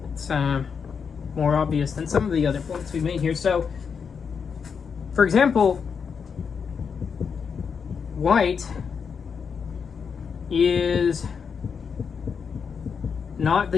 It's more obvious than some of the other points we've made here. So, for example, white is not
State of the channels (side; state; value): right; quieter; 6.3 dB